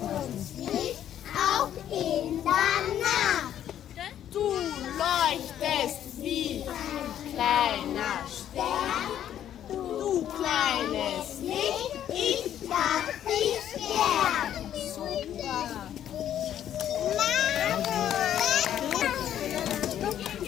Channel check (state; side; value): quieter; right; 10.7 dB